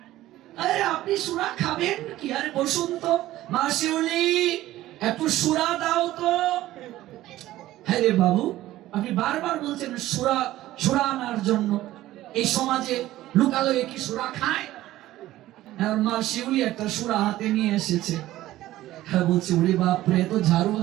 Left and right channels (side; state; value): left; quieter; 15.3 dB